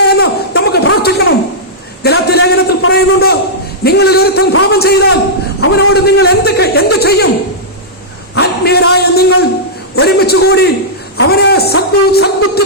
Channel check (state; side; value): normal; both; correlation -0.12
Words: എന്ന് നമുക്ക് പ്രാർത്ഥിക്കണം. ഗലാത്യ ലേഖനത്തിൽ പറയുന്നുണ്ട്, നിങ്ങളിൽ ഒരുത്തൻ പാപം ചെയ്താൽ അവനോട് നിങ്ങൾ എന്ത് ചെയ്യും? ആത്മീയരായ നിങ്ങൾ ഒരുമിച്ച് കൂടി അവനെ സദ്ബുദ്ധി